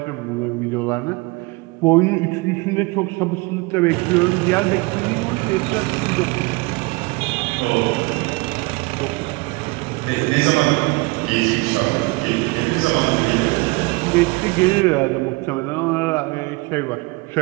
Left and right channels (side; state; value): left; quieter; 25.1 dB